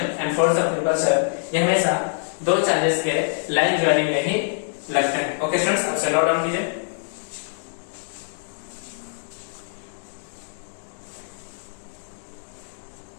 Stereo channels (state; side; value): silent; right; digital silence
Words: and force of repulsion ये हमेशा दो चार्जेस के लाइन ज्वाइनिंग में ही लगते हैं। ओके स्टूडेंट्स, आप नोट डाउन कीजिए।